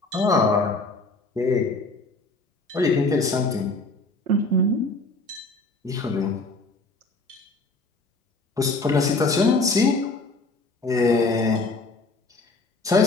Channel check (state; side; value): quieter; right; 3.2 dB